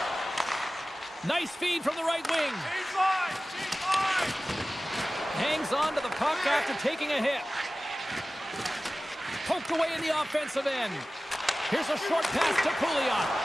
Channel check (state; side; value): normal; both; correlation 0.97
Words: Nice feed from the right wing. Change line! Change line! Hangs on to the puck after taking a hit. Poked away in the offensive end. Here's a short pass to Pouliot.